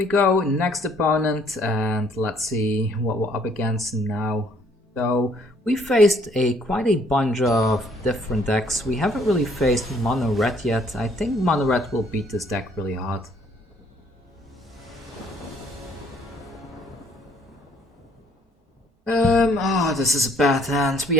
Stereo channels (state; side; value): normal; both; correlation 0.63